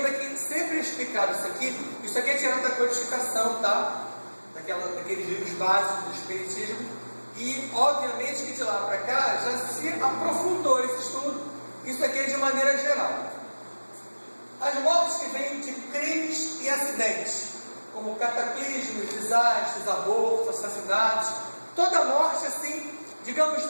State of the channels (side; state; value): both; inverted; correlation -1.00